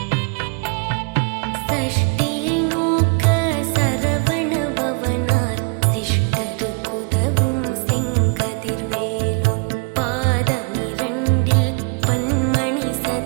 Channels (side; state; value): left; quieter; 34.6 dB